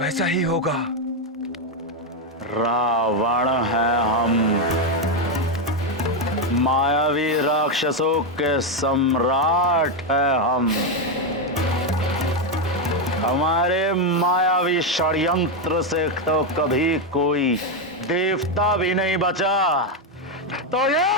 ही होगा। रावण है हम, मायावी राक्षसों के सम्राट है हम। हमारे मायावी षड्यंत्र से तो कभी कोई देवता भी नहीं बचा, तो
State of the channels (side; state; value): both; normal; correlation 0.06